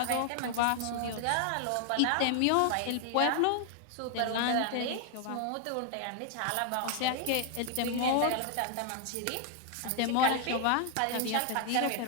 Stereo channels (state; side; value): different; both; correlation 0.00